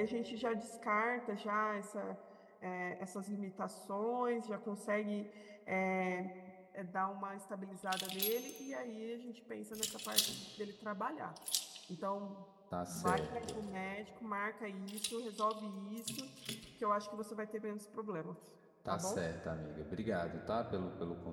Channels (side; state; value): both; identical; correlation 1.00